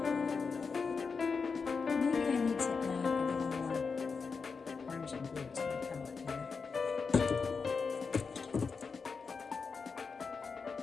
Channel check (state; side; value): quieter; right; 5.1 dB